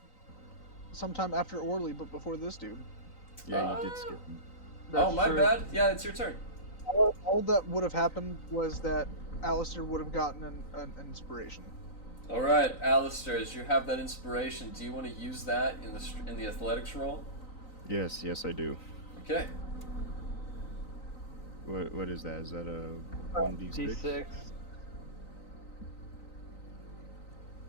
sometime after Orly, but before this dude. Yeah, you did skip him. Oh, my true. bad. Yeah, it's your turn. All that would have happened was that Alistair would have gotten an inspiration. All right, Alistair, as you have that inspiration, do you want to use that in the athletics roll? Yes, I do. Okay. What is that? Is that a 1d6? D6.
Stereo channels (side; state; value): right; late; 3.9 ms